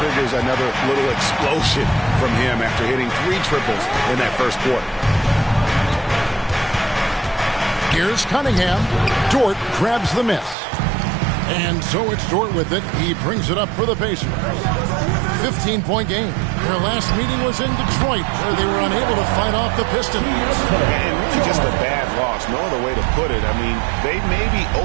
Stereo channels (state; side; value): drops out; left; at 10.6 s